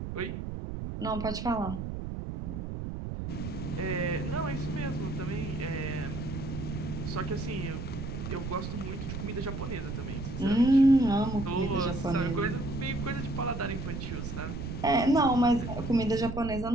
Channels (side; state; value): right; noise; rumble, 6 dB below the sound